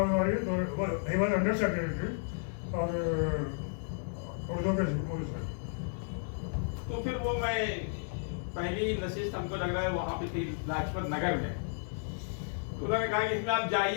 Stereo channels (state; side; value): silent; right; digital silence